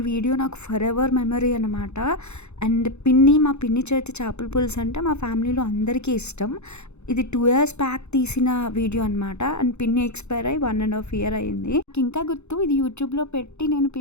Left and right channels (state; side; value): late; right; 0.81 ms